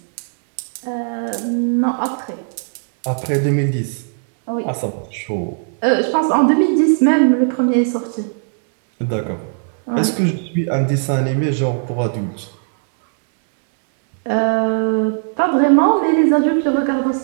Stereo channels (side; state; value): left; silent; digital silence